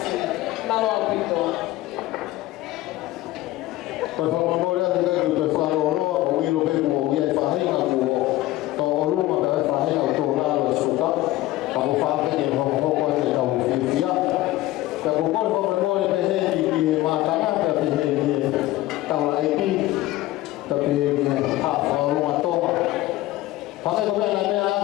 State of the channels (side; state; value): right; quieter; 16.6 dB